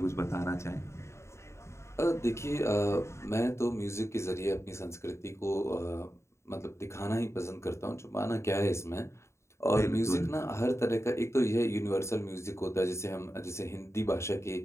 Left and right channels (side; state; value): right; late; 0.13 ms